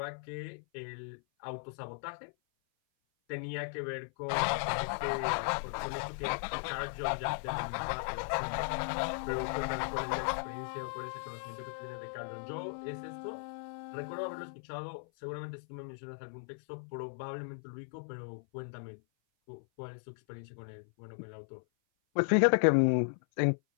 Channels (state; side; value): silent; right; 54 dB below the other